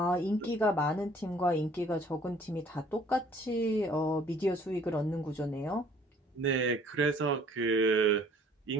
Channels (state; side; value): normal; both; correlation 0.56